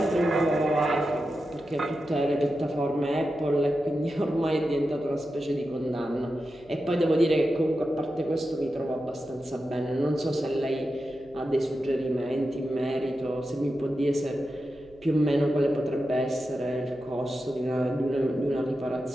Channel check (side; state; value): right; noise; hum, 27 dB below the sound